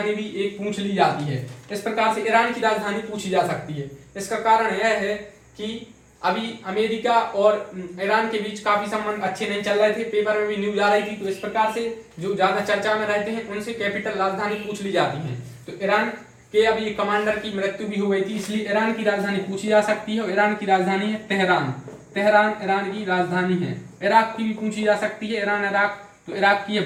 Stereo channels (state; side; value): identical; both; correlation 1.00